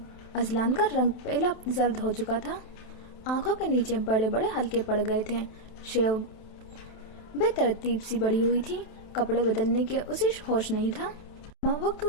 अजलान का रंग पहला जर्द हो चुका था, आंखों के नीचे बड़े बड़े हल्के पड़ गए थे, शेव बेतरतीब सी बड़ी हुई थी, कपड़े बदलने के उसे होश नहीं था। माँ वो क्यों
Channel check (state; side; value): late; right; 27 ms